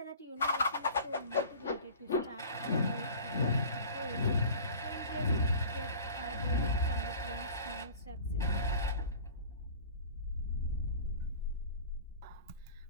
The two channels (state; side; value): inverted; both; correlation -0.42